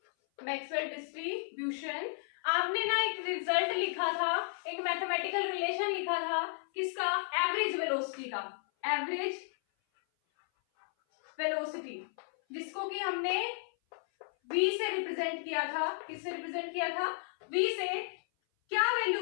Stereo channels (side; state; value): right; silent; 55 dB below the other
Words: आपने ना एक रिजल्ट लिखा था, एक मैथमेटिकल रिलेशन लिखा था, किसका, एवरेज वेलोसिटी का। एवरेज वेलोसिटी, जिसको कि हमने v से रिप्रेजेंट किया था। किससे रिप्रेजेंट किया था? v से। क्या वैल्यू